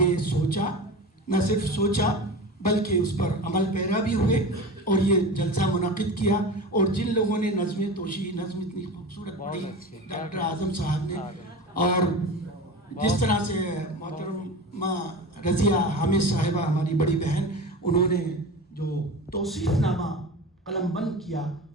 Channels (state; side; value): normal; both; correlation 0.30